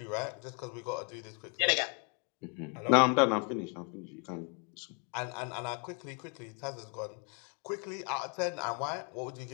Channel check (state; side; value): quieter; right; 36.7 dB